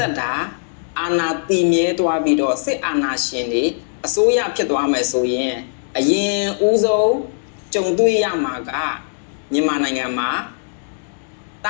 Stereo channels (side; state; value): right; silent; digital silence